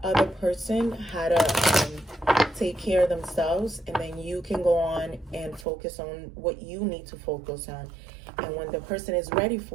other person how to take care of themselves, and then you can go on and focus on what you need to focus on. And when the person is ready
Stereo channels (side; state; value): left; drops out; at 5.7 s